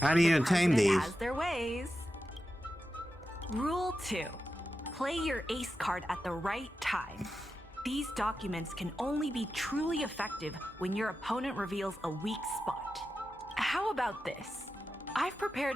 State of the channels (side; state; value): both; normal; correlation 0.90